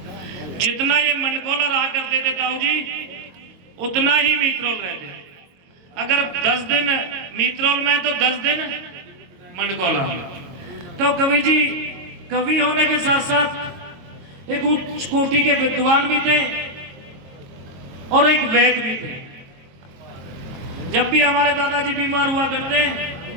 जितना ये मंडकोला रहा करते थे ताऊ जी उतना ही मीतरोल रहते। अगर 10 दिन मीतरोल में तो 10 दिन मंडकोला। तो कवि जी कवि होने के साथ साथ एक उच्च कोटि के विद्वान भी थे और एक वैद्य भी थे। जब भी हमारे दादाजी बीमार हुआ करते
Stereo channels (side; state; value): left; late; 22 ms